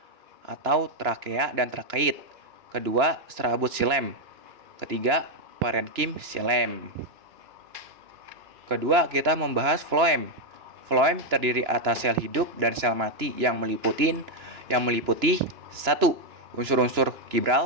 atau trakea dan trakeit. Kedua, serabut xilem. Ketiga, parenkim xilem. Kedua, kita membahas floem. Floem terdiri atas sel hidup dan sel mati yang meliputi 1. Unsur-unsur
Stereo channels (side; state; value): left; late; 2.9 ms